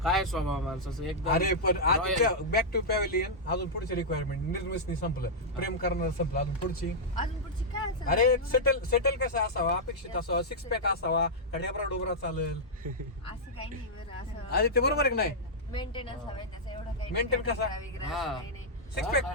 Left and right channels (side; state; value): both; normal; correlation -0.07